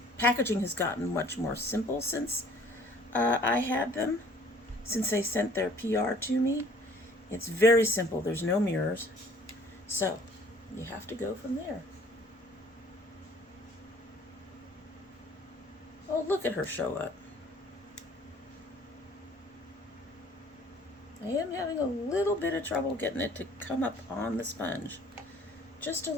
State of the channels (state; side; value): normal; both; correlation 0.55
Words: packaging has gotten much more simple since I had them, since they sent their PR to me. It's very simple. There's no mirrors, so you have to go from there. Oh, look at her show up. I am having a little bit of trouble getting it to come up on the sponge. Just a